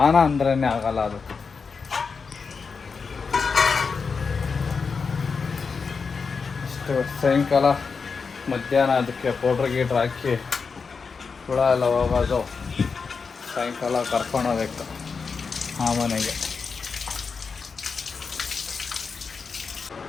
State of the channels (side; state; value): right; quieter; 5.2 dB